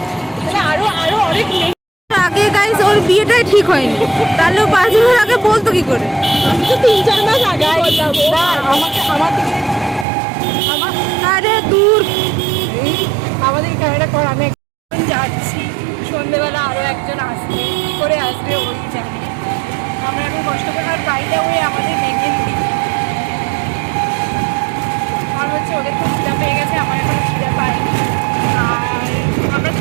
আরো অনেক আগে। গাইস ওর বিয়েটাই ঠিক হয়নি, তাহলে 5 বছর আগে বলতো কি করে? 3-4 মাস আগে আরে দূর আমাদের ক্যামেরা কর। আমি যাচ্ছি, সন্ধ্যেবেলা আরও একজন আসবে, কী করে আসবে ওই জানে। আমরা এখন কষ্ট করে, আর বাইরে ওই আমাদের মেহেন্দি, আর হচ্ছে ওদের খুব খিদা পেয়ে গেছে, আমার এখন খিদা পাইনি। আর আমরা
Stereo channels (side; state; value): left; drops out; at 10.1 s